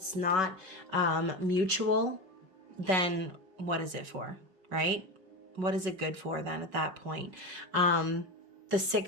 not mutual, then what is it for, right? What is it good for then at that point? The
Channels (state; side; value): late; left; 5.3 ms